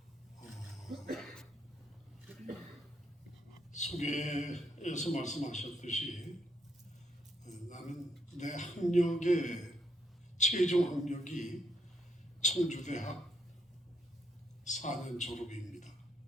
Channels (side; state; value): both; normal; correlation 0.76